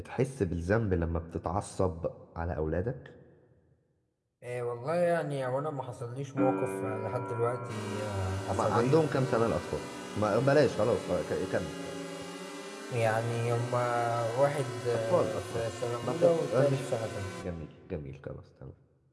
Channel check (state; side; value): identical; both; correlation 1.00